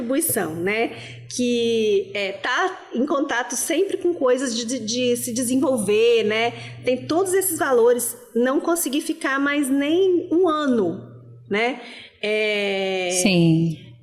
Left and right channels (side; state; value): both; identical; correlation 1.00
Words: né, que tá em contato sempre com coisas de se desenvolver, né, tem todos esses valores, não consegui ficar mais nem um ano, né, Sim.